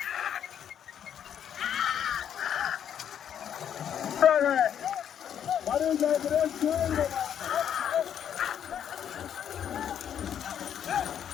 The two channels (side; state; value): right; quieter; 9.1 dB